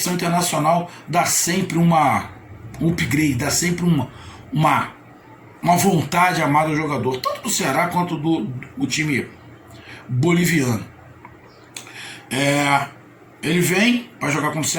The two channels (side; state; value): both; identical; correlation 1.00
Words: internacional dá sempre um upgrade, dá sempre uma vontade amada do jogador, tanto do Ceará quanto do time boliviano. Ele vem para jogar com o